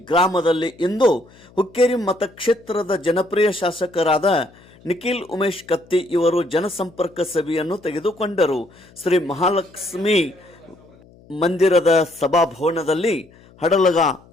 ಗ್ರಾಮದಲ್ಲಿ ಇಂದು ಹುಕ್ಕೇರಿ ಮತಕ್ಷೇತ್ರದ ಜನಪ್ರಿಯ ಶಾಸಕರಾದ ನಿಖಿಲ್ ಉಮೇಶ್ ಕತ್ತಿ ಇವರು ಜನಸಂಪರ್ಕ ಸಭೆಯನ್ನು ತೆಗೆದುಕೊಂಡರು. ಶ್ರೀ ಮಹಾಲಕ್ಷ್ಮಿ ಮಂದಿರದ ಸಭಾಭವನದಲ್ಲಿ ಹಡಲಗ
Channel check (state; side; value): noise; left; hum, 26 dB below the sound